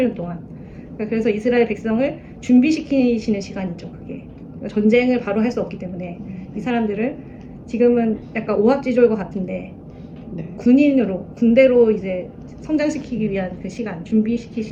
동안. 그래서 이스라엘 백성을 준비시키시는 시간이죠. 그게 전쟁을 바로 할 수 없기 때문에 이 사람들을 지금은 약간 오합지졸과 같은데 군대로 이제 성장시키기 위한 그 시간,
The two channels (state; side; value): identical; both; correlation 1.00